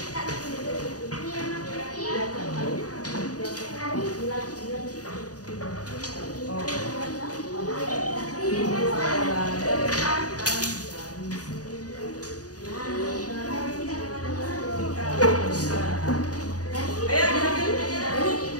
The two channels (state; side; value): late; right; 0.68 ms